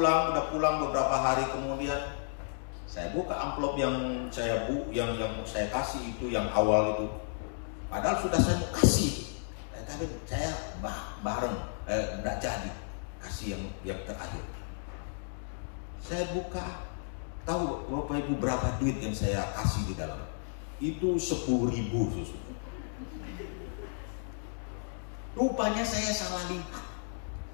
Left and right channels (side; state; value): right; silent; digital silence